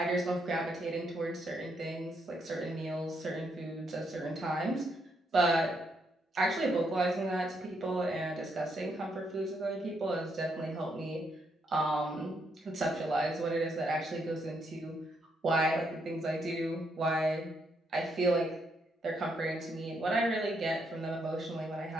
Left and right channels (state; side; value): normal; both; correlation 0.76